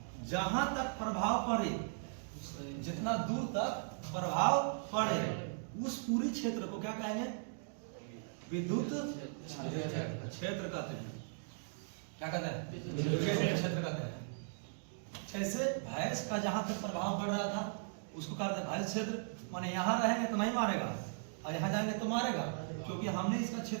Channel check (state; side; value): silent; left; digital silence